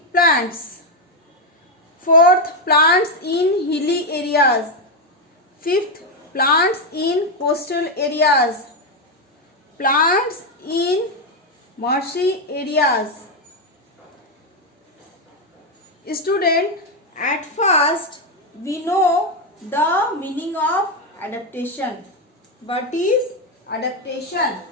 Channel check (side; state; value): both; normal; correlation 0.05